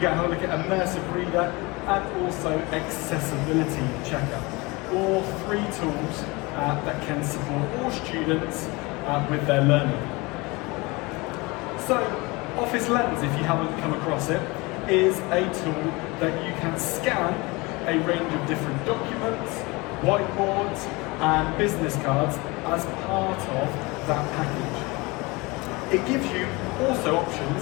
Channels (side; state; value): right; quieter; 24.7 dB